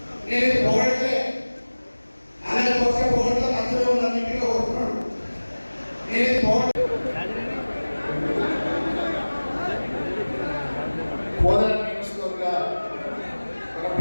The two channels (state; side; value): inverted; both; correlation -1.00